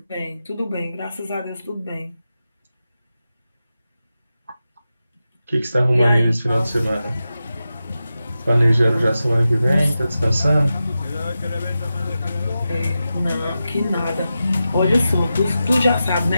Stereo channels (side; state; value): both; inverted; correlation -0.92